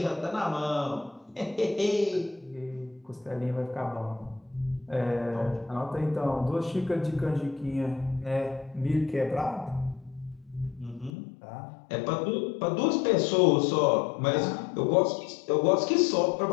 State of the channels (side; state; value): right; drops out; at 11.1 s